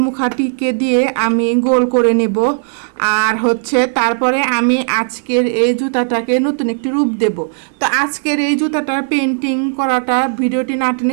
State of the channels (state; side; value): silent; left; digital silence